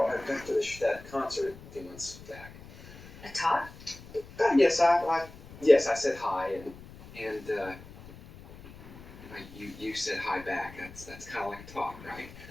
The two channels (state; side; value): noise; left; rumble, 18 dB below the sound